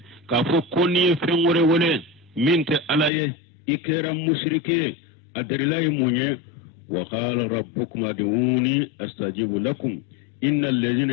ka fo koni fengore wole minte alaye ikera mushrike adrilahi munye وقال ربكم ادعوني استجيب لكم ان الذين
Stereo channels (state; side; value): drops out; right; at 3.1 s